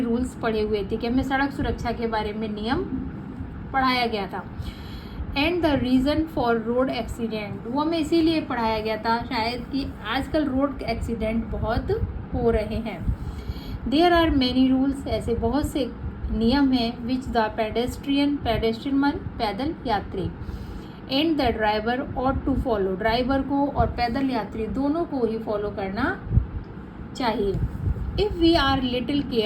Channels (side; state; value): both; identical; correlation 1.00